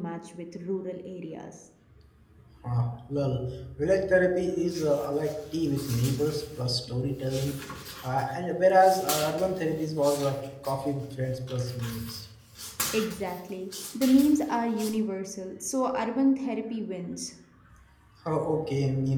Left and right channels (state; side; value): identical; both; correlation 1.00